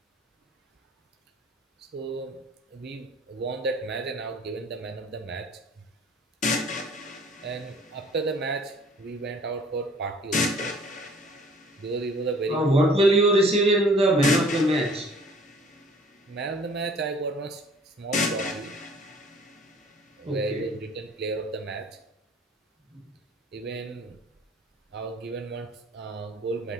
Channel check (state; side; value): normal; both; correlation 0.53